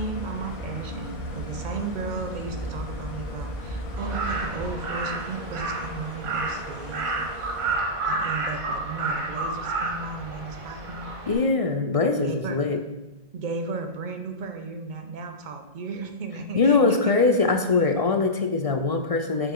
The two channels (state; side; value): late; left; 1.6 ms